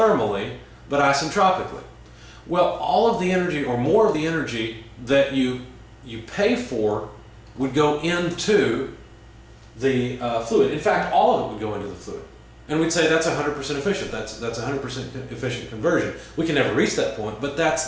but isentropically? Well, all of the energy, or more of the energy that you pay for, would go into the fluid. In fact, all of it would go into the fluid. And we'd say that's 100% efficient. That's 100% efficient conversion. We can never reach that point, but that's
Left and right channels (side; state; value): both; identical; correlation 1.00